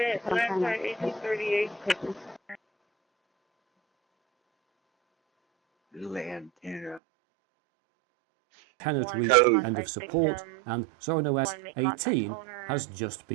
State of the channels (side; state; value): left; drops out; at 7.0 s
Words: some kind of 1838. Little antenna. Cannot reach end of support, and ZoranOS 18 has just